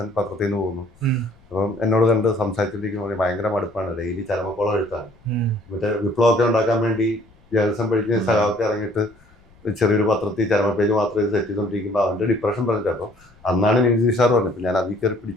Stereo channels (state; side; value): noise; left; rumble, 29 dB below the sound